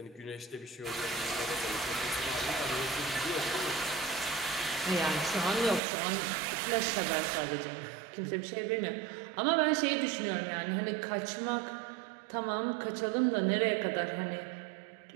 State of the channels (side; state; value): left; drops out; at 5.8 s